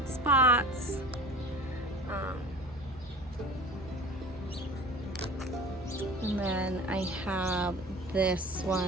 spots. And then I have this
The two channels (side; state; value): both; normal; correlation 0.40